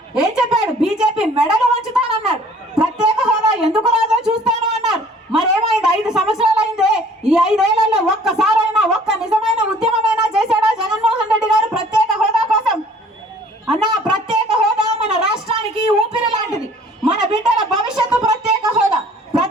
ఏం చెప్పాడు? బీజేపీ మెడలు వంచుతానన్నాడు. ప్రత్యేక హోదా ఎందుకు రాదో చూస్తాను అన్నారు. మరేమైంది? 5 సంవత్సరాలు అయిందే. ఈ 5 ఏళ్లలో ఒక్కసారైనా ఒక్క నిజమైన ఉద్యమమైనా చేశాడా జగన్మోహన్ రెడ్డి గారు ప్రత్యేక హోదా కోసం? అన్నా, ప్రత్యేక హోదా మన రాష్ట్రానికి ఊపిరి లాంటిది. మన బిడ్డల భవిష్యత్తు ప్రత్యేక హోదా.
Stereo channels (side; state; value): both; normal; correlation 0.54